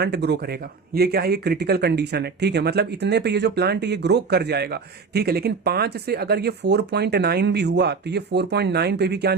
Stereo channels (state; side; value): quieter; left; 5.0 dB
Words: ग्रो करेगा। ये क्या है, ये क्रिटिकल कंडीशन है, ठीक है। मतलब इतने पे ये जो प्लांट ये ग्रो कर जाएगा, ठीक है। लेकिन 5 से अगर ये 4.9 भी हुआ तो ये 4.9 पे भी क्या